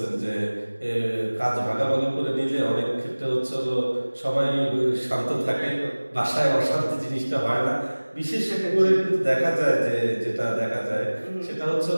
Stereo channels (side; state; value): both; inverted; correlation -1.00